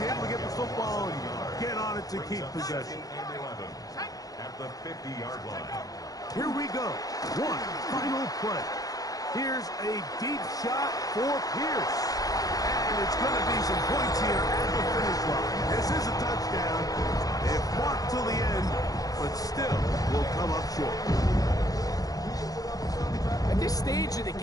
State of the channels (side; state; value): right; late; 0.18 ms